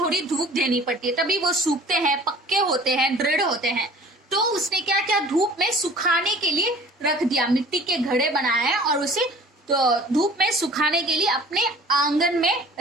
धूप देनी पड़ती है, तभी वो सूखते हैं, पक्के होते हैं, दृढ़ होते हैं। तो उसने क्या किया, धूप में सुखाने के लिए रख दिया। मिट्टी के घड़े बनाए और उसे तो धूप में सुखाने के लिए अपने आंगन में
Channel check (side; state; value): both; normal; correlation 0.47